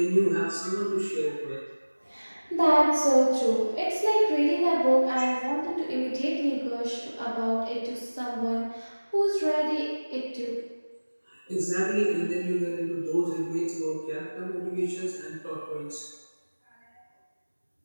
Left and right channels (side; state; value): both; inverted; correlation -1.00